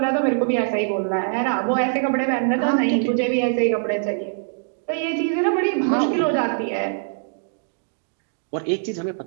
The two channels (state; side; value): silent; left; digital silence